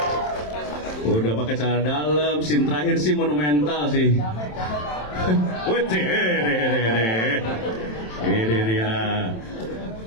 Udah pakai celana dalam, scene terakhir sih monumental sih. Ini dia.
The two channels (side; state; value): right; late; 27 ms